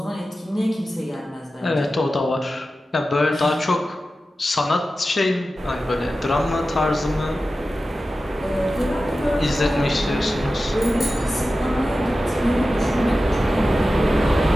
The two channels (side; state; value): both; normal; correlation 0.94